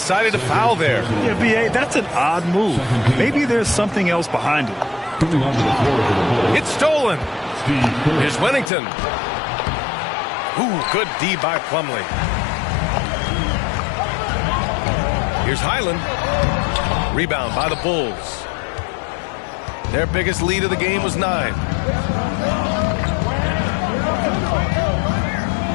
to foul there. Yeah, B.A., that's an odd move. Maybe there's something else behind it. It's stolen. Here's Wennington. Ooh, good D by Plumlee. Here's Highland. Rebound by the Bulls. Their biggest lead of the game was 9.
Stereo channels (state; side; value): drops out; right; at 8.7 s